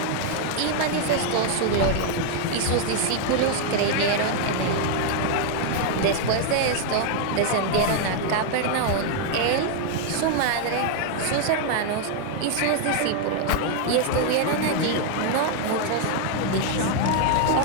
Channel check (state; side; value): different; both; correlation 0.00